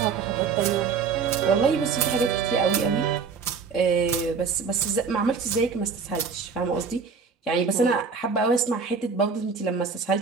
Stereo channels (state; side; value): quieter; left; 5.5 dB